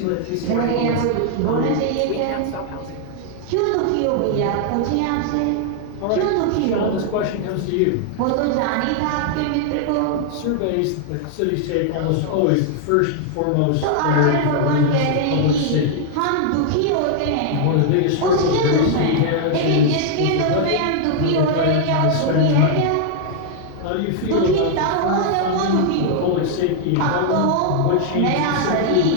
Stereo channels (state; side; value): different; both; correlation 0.00